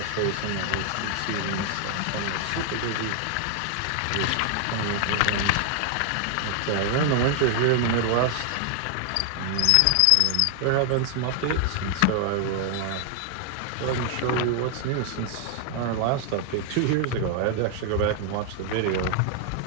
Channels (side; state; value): both; different; correlation 0.00